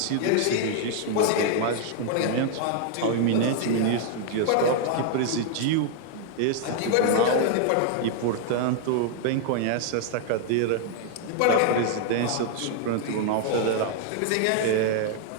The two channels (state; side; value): different; both; correlation 0.00